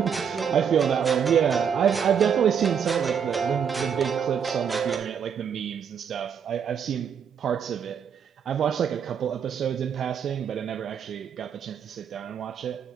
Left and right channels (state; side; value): quieter; left; 7.5 dB